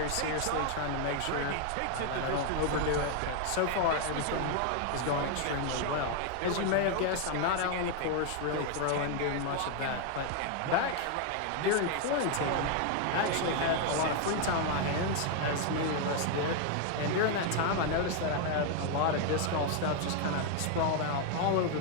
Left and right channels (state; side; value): different; both; correlation 0.01